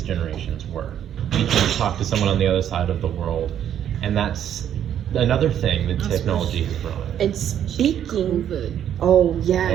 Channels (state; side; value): quieter; left; 10.0 dB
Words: generations were. We can talk to someone on the other side of the world, and that's another thing that technology has brought. And speaking, COVID. oh yeah,